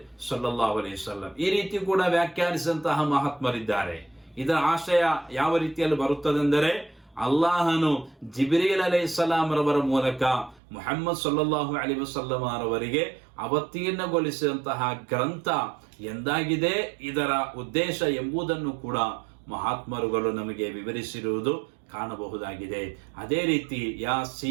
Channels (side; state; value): left; drops out; at 10.6 s